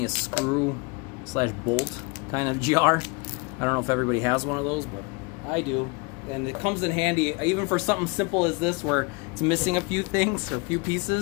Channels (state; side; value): quieter; right; 29.7 dB